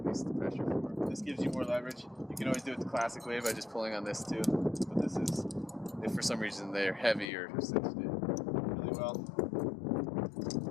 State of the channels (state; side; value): drops out; right; at 7.2 s